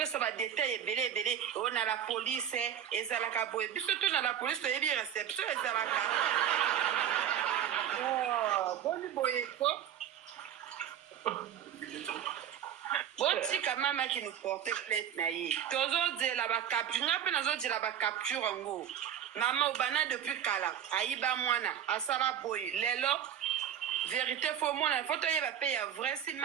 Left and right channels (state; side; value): quieter; left; 9.7 dB